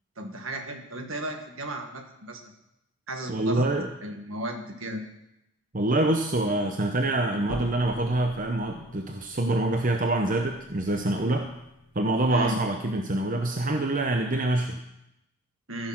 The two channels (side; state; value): both; normal; correlation 0.49